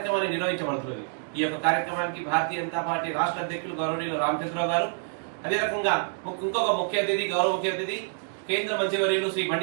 నిర్వహించబడుతుంది. ఈ యొక్క కార్యక్రమానికి భారతీయ జనతా పార్టీ రాష్ట్ర అధ్యక్షులు గౌరవనీయులు రామచంద్రరావు గారు, అదే రకంగా ఇంకొక ముఖ్య అతిథి గౌరవ ముఖ్య అతిథి కేంద్ర మంత్రివర్యులు శ్రీ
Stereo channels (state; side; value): silent; left; digital silence